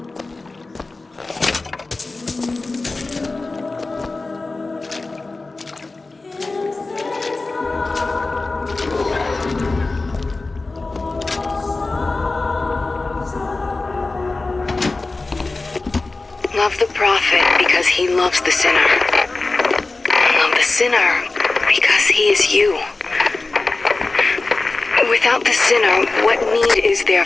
Love the prophet because he loves the sinner. Love the sinner because he is you. Without the sinner, what need is there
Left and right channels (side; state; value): right; quieter; 3.4 dB